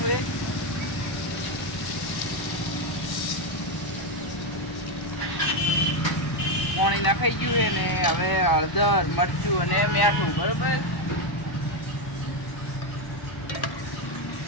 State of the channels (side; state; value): right; late; 1.0 ms